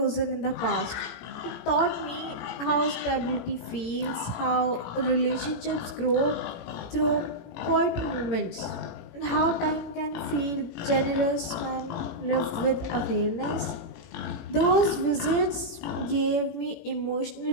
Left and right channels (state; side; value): late; right; 17 ms